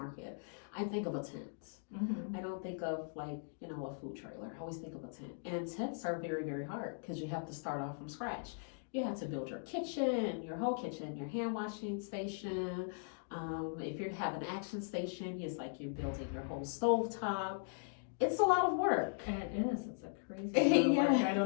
I think of a tent. I don't think of like a food trailer. I always think of a tent. And tents are very, very hard because you have to start off from scratch. You have to build your kitchen, your whole kitchen, your hand washing station. If you have an action station, it's like you're building your whole stovetop. It's a lot of work. And it is. It's a crazy amount of work. I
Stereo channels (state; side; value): silent; right; digital silence